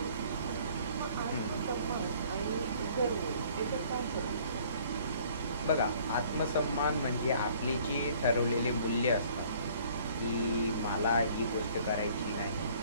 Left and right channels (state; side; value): inverted; both; correlation -0.56